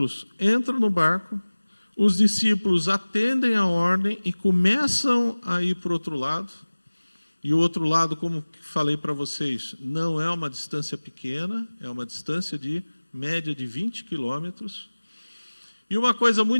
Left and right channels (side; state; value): both; inverted; correlation -1.00